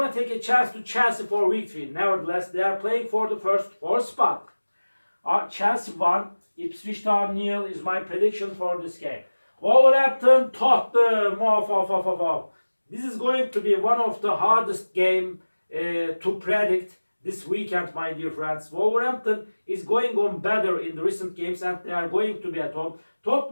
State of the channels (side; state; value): both; inverted; correlation -1.00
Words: take a chance to Chelsea for week 3. Nevertheless, they are playing for the first 4 spot. Chelsea 1, Ipswich Town 0 is my prediction for this game. Wolverhampton, Tottenham. This is going to be one of the hardest game to predict this weekend, my dear friends. Wolverhampton is going on better in the recent games and they are going to be at home.